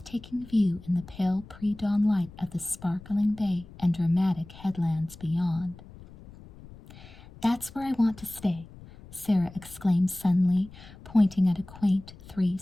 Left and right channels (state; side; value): noise; left; rumble, 19 dB below the sound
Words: view in the pale pre-dawn light of the sparkling bay and dramatic headlands beyond. "That's where I want to stay," Sarah exclaimed suddenly, pointing at a quaint